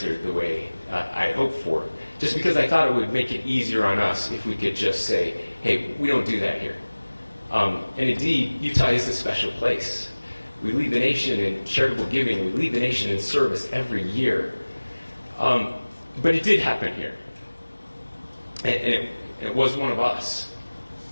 the way I hoped for. Just because I thought it would make it easier on us if we could just say, hey, we don't do that here. And indeed, Utah is a special place. We lead the nation in charitable giving. We lead the nation in service every year. But it did happen here. And it was one of us.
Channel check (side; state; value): both; inverted; correlation -1.00